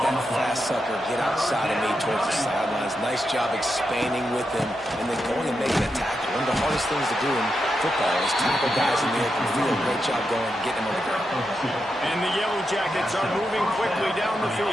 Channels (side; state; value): both; normal; correlation 0.86